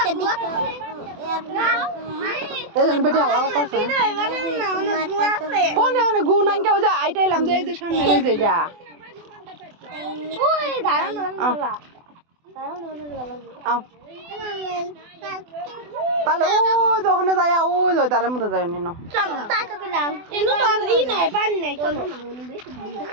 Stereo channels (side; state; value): left; late; 24 ms